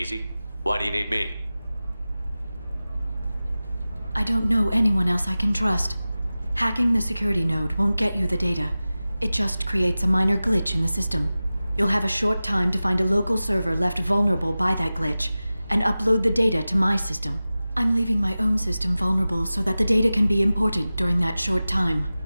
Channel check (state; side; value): inverted; both; correlation -0.96